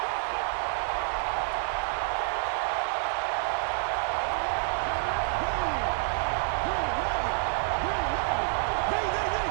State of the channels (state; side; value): silent; left; 59 dB below the other